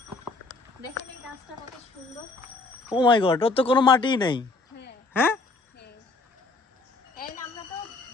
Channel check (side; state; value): right; quieter; 3.4 dB